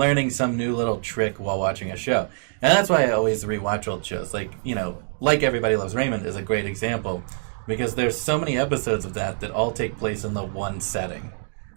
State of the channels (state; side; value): silent; left; digital silence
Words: some new little trick while watching a show. And that's why I always rewatch old shows. Like, like Everybody Loves Raymond is a great example, because there's so many episodes of that all take place in the one setting,